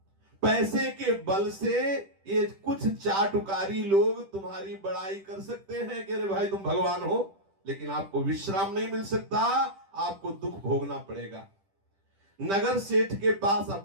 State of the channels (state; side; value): late; left; 10 ms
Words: पैसे के बल से ये कुछ चाटुकारी लोग तुम्हारी बड़ाई कर सकते हैं कि अरे भाई तुम भगवान हो, लेकिन आपको विश्राम नहीं मिल सकता, आपको दुख भोगना पड़ेगा। नगर सेठ के पास